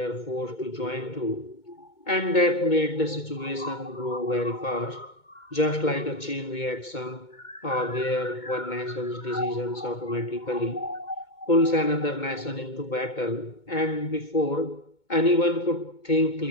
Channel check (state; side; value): late; right; 2.2 ms